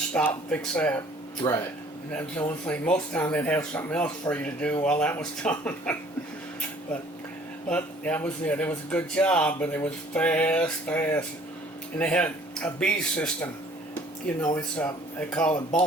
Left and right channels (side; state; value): both; normal; correlation 0.55